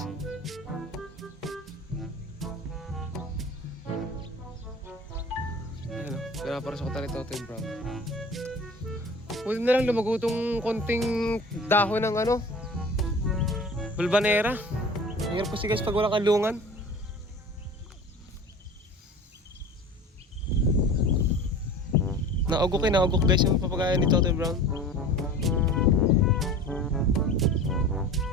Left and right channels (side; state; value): both; normal; correlation 0.39